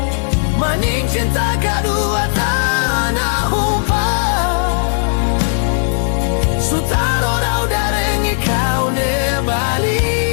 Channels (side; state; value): right; silent; digital silence